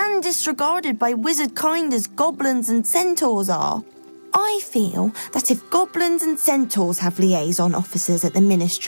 disregarded by wizard kind as goblins and centaurs are. I feel that if goblins and centaurs have liaison officers at the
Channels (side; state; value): both; inverted; correlation -1.00